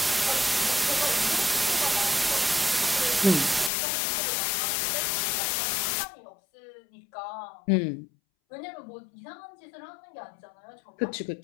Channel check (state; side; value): drops out; right; at 3.7 s